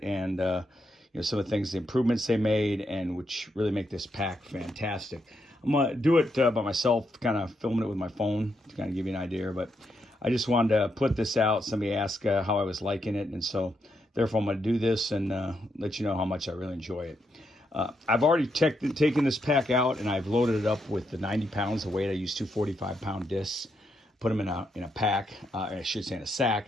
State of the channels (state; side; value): normal; both; correlation 0.80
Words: and some of the things, the improvements they made, and which really make this pack fantastic. I'm going to do it by myself, kind of filming it with my phone to kind of give you an idea. But I just wanted to put this out. Somebody asked how I was liking it. And so, therefore, I'm going to do this and let you know how much I really enjoy it. I've already taken this pack out, and I've loaded it up with the 90 pounds of weight. I use two 45-pound discs, put them in a pack, I should say in a